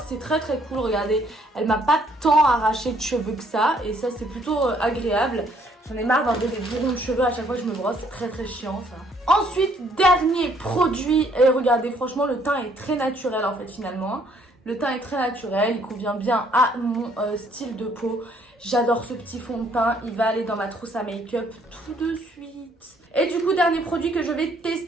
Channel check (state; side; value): normal; both; correlation 0.65